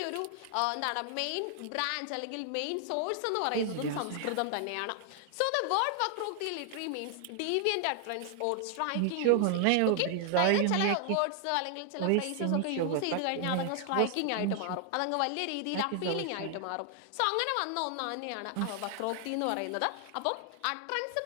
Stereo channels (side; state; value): both; different; correlation 0.00